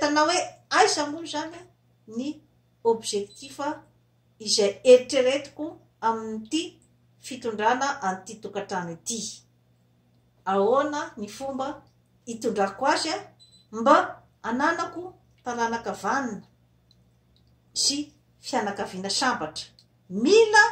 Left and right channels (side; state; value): both; identical; correlation 1.00